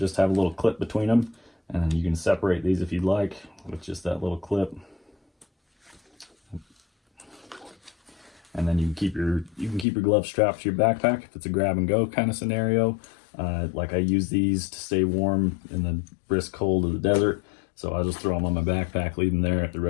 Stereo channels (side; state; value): right; drops out; at 9.9 s